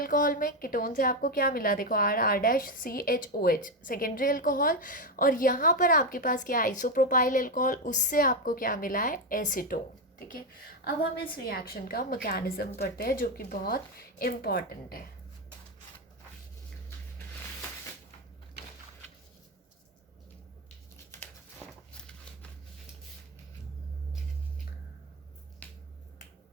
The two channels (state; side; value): normal; both; correlation 0.09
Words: में। कीटोन से आपको क्या मिला, देखो R⁻CHOH सेकेंडरी अल्कोहल, और यहाँ पर आपके पास क्या आइसोप्रोपाइल अल्कोहल, उससे आपको क्या मिला है, एसीटोन। ठीक है, अब हम इस रिएक्शन का मैकेनिज्म पढ़ते हैं जो कि बहुत इम्पॉर्टेंट है।